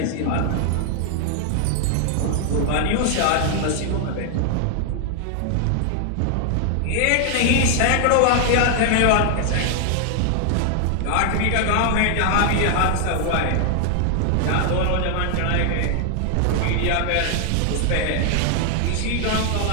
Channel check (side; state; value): both; different; correlation 0.00